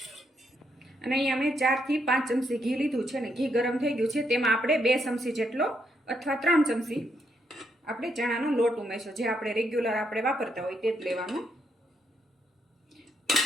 અને અહીંયા મેં 4 થી 5 ચમચી ઘી લીધું છે અને ઘી ગરમ થઈ ગયું છે। તેમાં આપણે 2 ચમચી જેટલો અથવા 3 ચમચી આપણે ચણાનો લોટ ઉમેરશું। જે આપણે રેગ્યુલર આપણે વાપરતા હોય તે જ લેવાનું।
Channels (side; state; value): both; normal; correlation 0.77